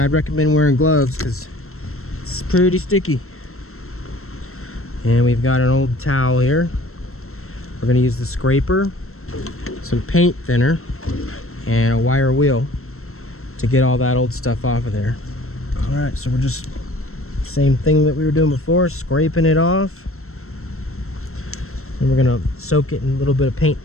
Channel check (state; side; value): late; right; 0.63 ms